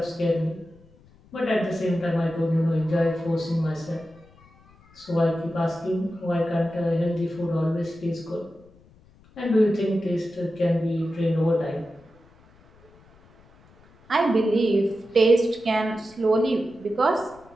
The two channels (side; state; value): left; noise; rumble, 28 dB below the sound